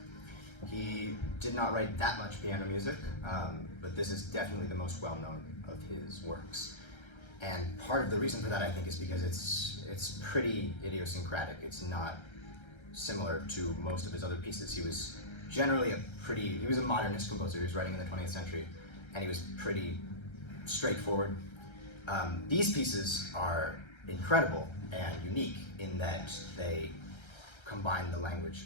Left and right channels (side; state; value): right; late; 1.3 ms